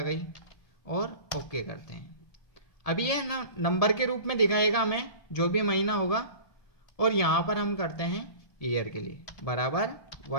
गई और ओके करते हैं। अभी ये नंबर के रूप में दिखाएगा हमें जो भी महीना होगा, और यहां पर हम करते हैं ईयर के लिए बराबर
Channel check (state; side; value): late; right; 1.7 ms